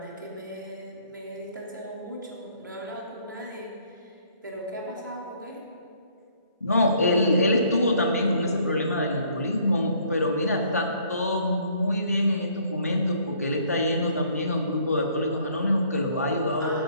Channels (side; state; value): both; inverted; correlation -0.62